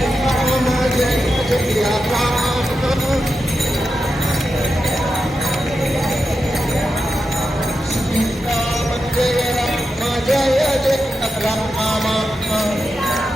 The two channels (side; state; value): both; normal; correlation 0.89